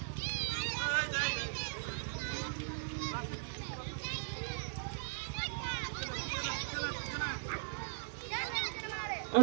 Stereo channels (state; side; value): silent; left; digital silence